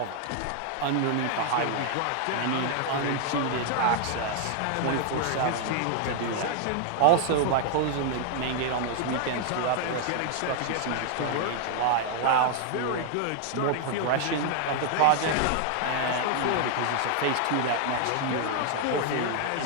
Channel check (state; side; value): different; both; correlation 0.00